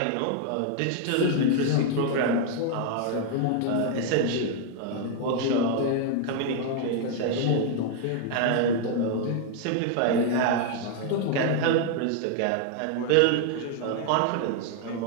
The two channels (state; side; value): different; both; correlation 0.00